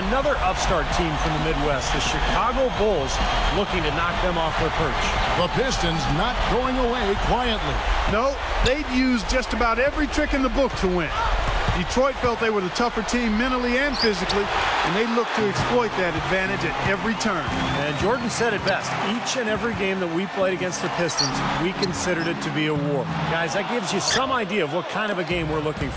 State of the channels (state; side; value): identical; both; correlation 1.00